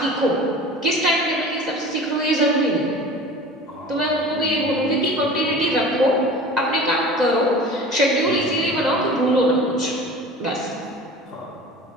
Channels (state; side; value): normal; both; correlation 0.39